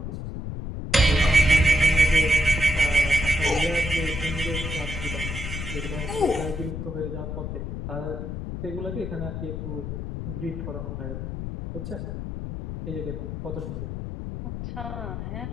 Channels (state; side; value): noise; left; rumble, 6 dB below the sound